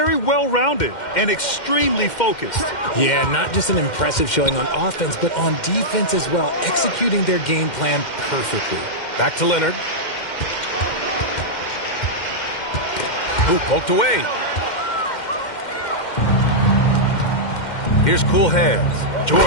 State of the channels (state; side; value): late; right; 2.1 ms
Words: well-rounded and extremely focused. Yeah, not just an impressive showing on offense, but on defense as well, executing their game plan perfectly. Back to Leonard. Ooh, poked away. Here's cool hands.